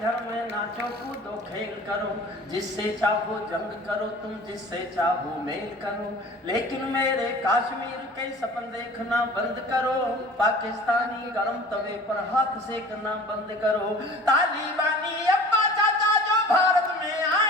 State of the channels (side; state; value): both; normal; correlation 0.43